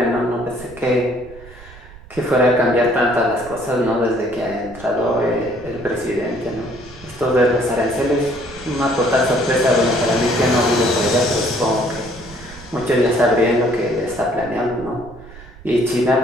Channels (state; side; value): noise; right; rumble, 19 dB below the sound